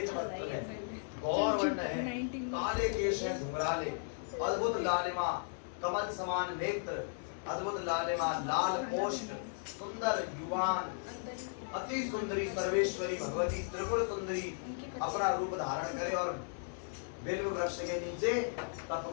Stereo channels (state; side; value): silent; right; 54 dB below the other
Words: वस्त्र है, गौर वर्ण है, काले केश है घुंघराले, अद्भुत लालिमा, कमल समान नेत्र, अद्भुत लालिमा, लाल कोष्ठ, सुंदर युवान, अति सुंदरी सर्वेश्वरी भगवती त्रिपुर सुंदरी अपना रूप धारण करे और बिल्व वृक्ष के नीचे तप